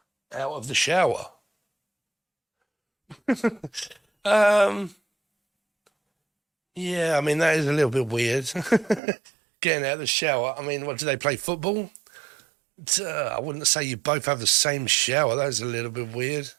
out of the shower. Yeah, I mean, that is a little bit weird. Getting out of the shower. I mean, what, do they play football? I wouldn't say you both have the same shower. That is a little bit weird.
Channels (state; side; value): drops out; left; at 9.0 s